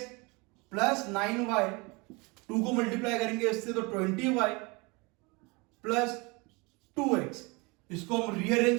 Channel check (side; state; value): left; quieter; 27.4 dB